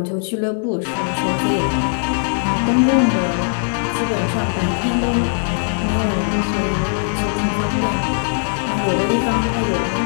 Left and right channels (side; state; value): right; silent; digital silence